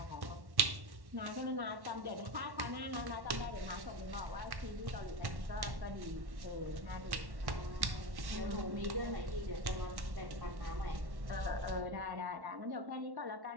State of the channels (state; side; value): late; left; 1.1 ms